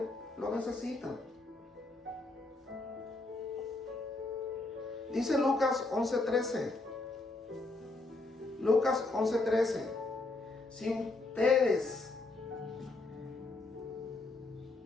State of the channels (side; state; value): right; quieter; 3.1 dB